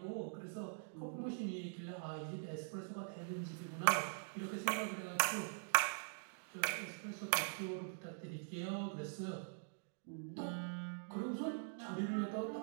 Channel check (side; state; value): left; silent; digital silence